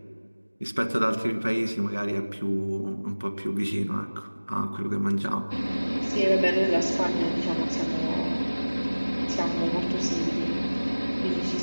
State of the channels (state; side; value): inverted; both; correlation -1.00